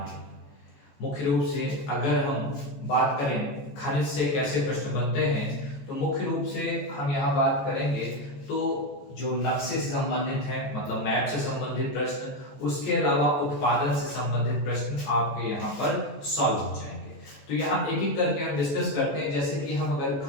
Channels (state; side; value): late; right; 14 ms